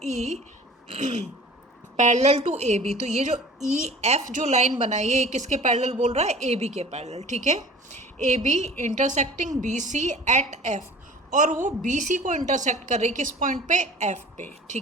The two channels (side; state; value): both; normal; correlation 0.44